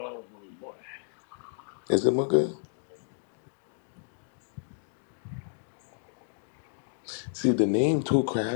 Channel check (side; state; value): right; silent; digital silence